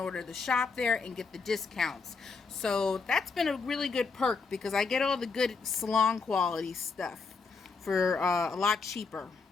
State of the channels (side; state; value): right; quieter; 4.7 dB